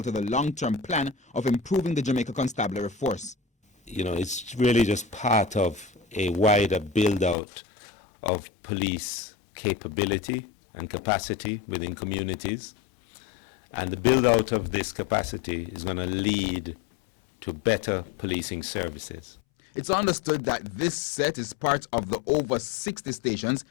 to the long-term plan of improving the Jamaica Constabulary force. You know, it's really just part of a wider build-out of police capability and capacity within communities. And the build-out of this capacity is going to lead to better policing services. It's understood that this set is part of the over 60 stations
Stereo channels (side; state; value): right; drops out; at 7.4 s